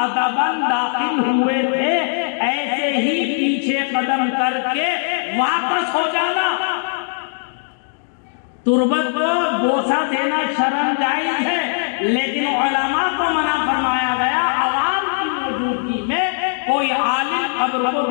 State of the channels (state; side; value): silent; right; digital silence